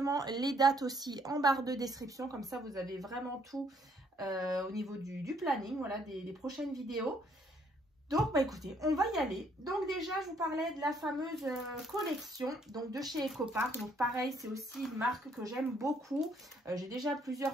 les dates aussi en barre de description. Comme ça, vous avez vraiment tout au niveau du planning, voilà, des prochaines vidéos. Donc, écoutez, on va y aller. Donc, déjà, je vous parlais de la fameuse collection donc de chez Ecopark. Donc, pareil, c'est aussi une marque que j'aime beaucoup. J'ai déjà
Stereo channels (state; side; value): normal; both; correlation 0.67